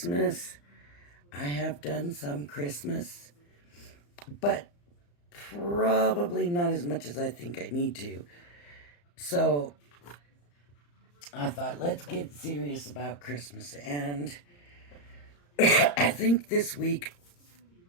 I have done some Christmas, but probably not as much as I think I need to. So I thought, let's get serious about Christmas. And I think this week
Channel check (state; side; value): late; right; 35 ms